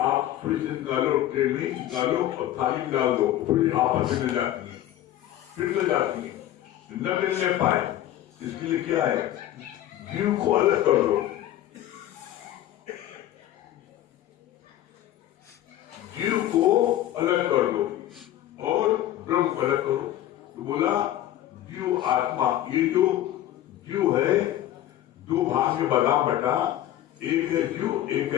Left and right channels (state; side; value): quieter; right; 13.0 dB